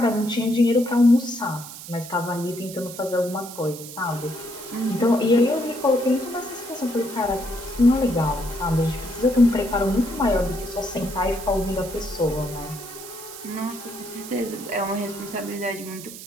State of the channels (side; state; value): right; noise; hiss, 13 dB below the sound